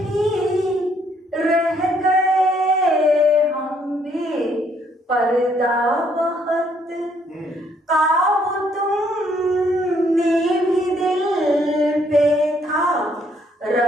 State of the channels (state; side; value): normal; both; correlation 0.68